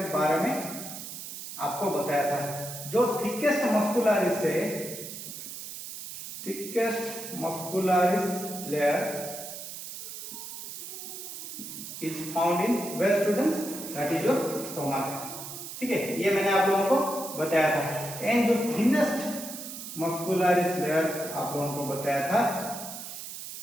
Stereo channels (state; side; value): noise; right; hiss, 9 dB below the sound